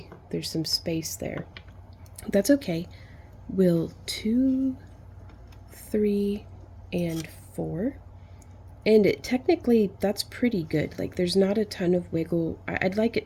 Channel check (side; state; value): both; identical; correlation 1.00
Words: there's some space there. That's okay. We'll 2, 3, and 4. And technically, that's pretty good. Like, there's not a ton of wiggle. I'd like